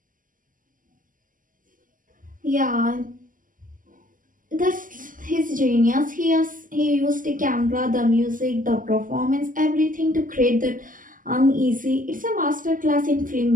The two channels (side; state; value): left; late; 0.39 ms